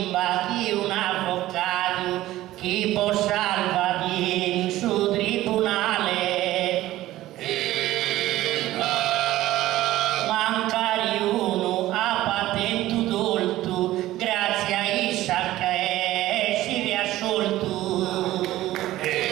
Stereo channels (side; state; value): left; quieter; 15.5 dB